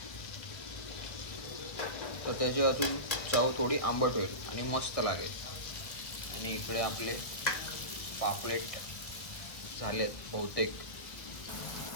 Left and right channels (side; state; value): right; late; 1.4 ms